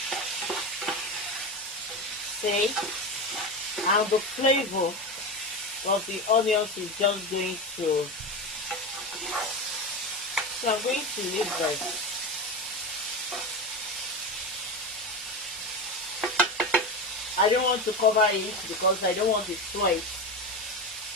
See, and the flavor of the onions is just going to So I'm going to leave this. I don't want to cover it because I don't want the sweat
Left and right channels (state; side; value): normal; both; correlation 0.21